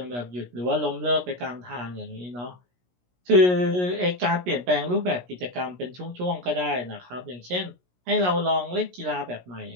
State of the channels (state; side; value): late; left; 17 ms